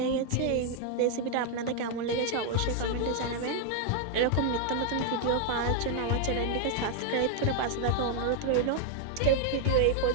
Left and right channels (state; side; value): different; both; correlation 0.00